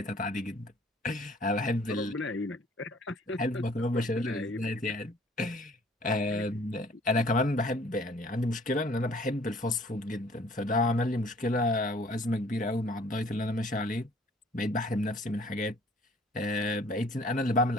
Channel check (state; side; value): normal; both; correlation 0.55